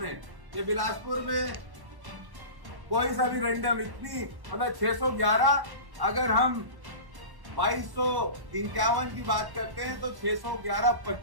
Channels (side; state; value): left; late; 1.1 ms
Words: ये बिलासपुर में कोई सा भी रैंडम इतनी मतलब 611, अगर हम 2251 की बात करते हैं तो 611